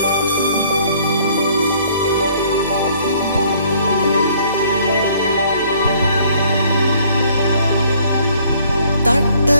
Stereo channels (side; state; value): both; inverted; correlation -0.60